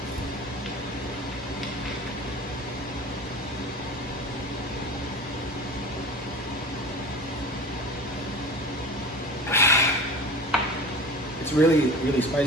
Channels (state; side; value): normal; both; correlation 0.35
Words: It's really, really